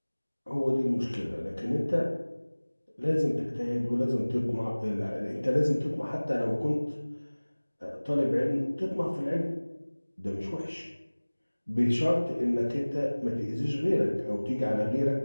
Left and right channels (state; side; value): inverted; both; correlation -1.00